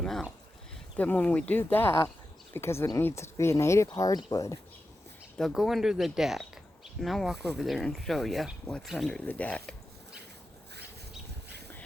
them out. Then when we do that, because it needs to be a native hardwood, they'll go under the deck. And I'll walk over there and show you what's under the deck.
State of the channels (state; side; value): normal; both; correlation 0.91